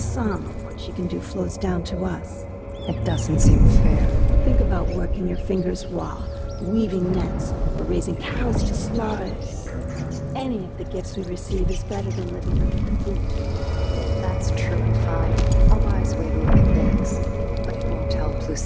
of what she can do flows down to us. It doesn't seem fair. Think about working your fingers raw, weaving nets, or raising cows to slaughter. Any of the gifts we receive is better than living on food. That's true and fine. A wise way to look at things. But it won't help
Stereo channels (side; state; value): both; identical; correlation 1.00